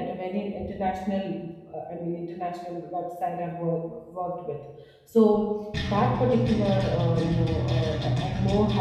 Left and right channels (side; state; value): both; identical; correlation 1.00